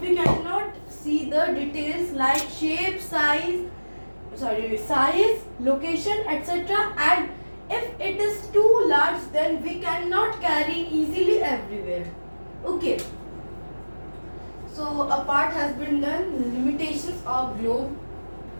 we cannot see the details like size, location, etc. And if it is too large, then we cannot carry easily everywhere. Okay. So a part has been done. Limitations of globe.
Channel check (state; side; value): inverted; both; correlation -1.00